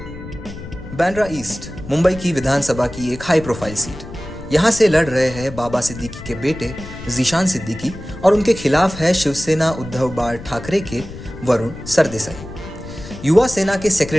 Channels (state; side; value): noise; left; rumble, 13 dB below the sound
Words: बांद्रा ईस्ट मुंबई की विधानसभा की एक हाई प्रोफाइल सीट। यहाँ से लड़ रहे हैं बाबा सिद्दीकी के बेटे जीशान सिद्दीकी और उनके खिलाफ है शिवसेना उद्धव बाळ ठाकरे के वरुण सरदेसाई। युवा सेना के